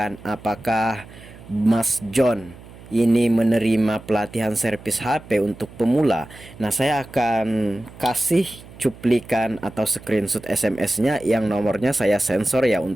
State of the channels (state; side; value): noise; right; hum, 19 dB below the sound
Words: apakah Mas John ini menerima pelatihan servis HP untuk pemula. Nah, saya akan kasih cuplikan atau screenshot SMS-nya yang nomornya saya sensor ya